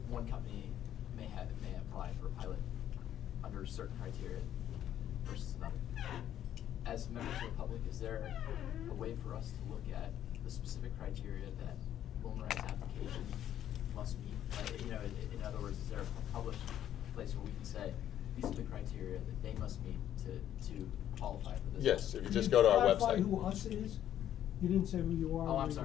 one company may apply for a pilot under certain criteria versus another. As members of the public, is there a way for us to look at the specific criteria that Wilmorite's application must meet? In other words, is there a published place where we can say, these are the criteria that they must meet to qualify for this? Yes, if you just go to our Clarify website. who us is? You didn't say who you are. Oh, I'm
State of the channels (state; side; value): quieter; right; 11.0 dB